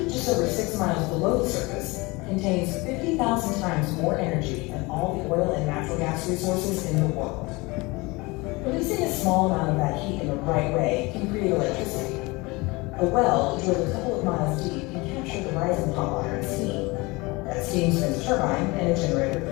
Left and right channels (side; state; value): right; quieter; 24.2 dB